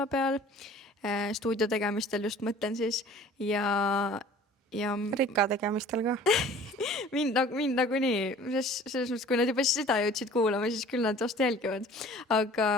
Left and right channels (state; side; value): normal; both; correlation 0.48